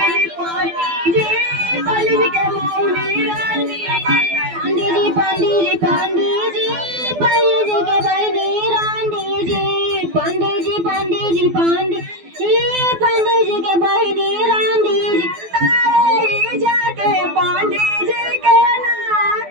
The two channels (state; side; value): late; left; 12 ms